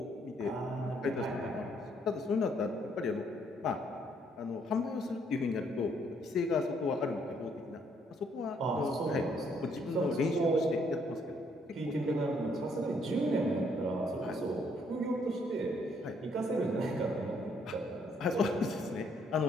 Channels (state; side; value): normal; both; correlation 0.69